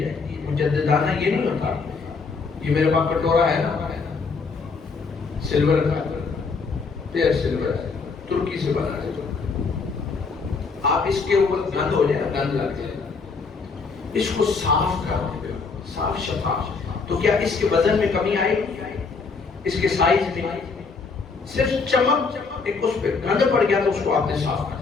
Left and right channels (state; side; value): quieter; right; 4.7 dB